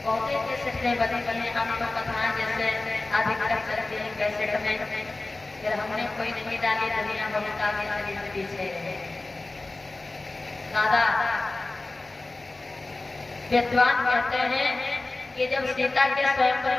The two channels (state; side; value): quieter; right; 3.1 dB